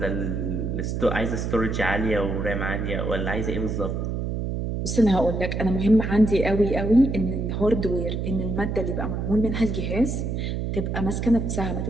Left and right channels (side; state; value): right; noise; hum, 2 dB below the sound